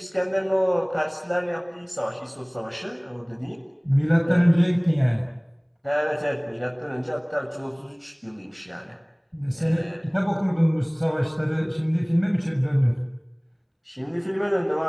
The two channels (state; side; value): identical; both; correlation 1.00